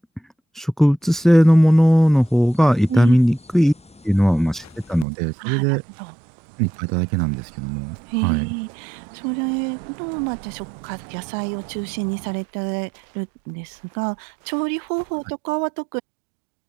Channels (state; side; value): drops out; left; at 5.1 s